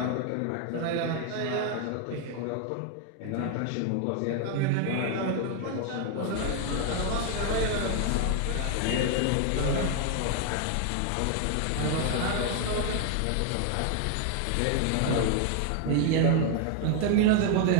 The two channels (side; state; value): both; different; correlation 0.00